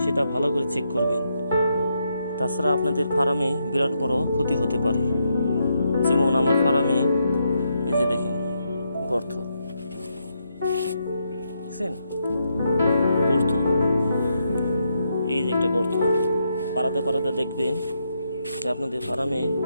সেটা ভালো করে চেক করবেন। তাছাড়া আপনাদের ফার্মে বিরাট বড় ক্ষতি হতে পারে। যেমন আমার ফার্মে এই যে দেখেন গর্ত, দেখছেন গর্ত, এই যে একটা গর্ত। পাড়াতে পাড়াতে দেখবেন যে আপনাদের ফার্মে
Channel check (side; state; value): both; inverted; correlation -0.80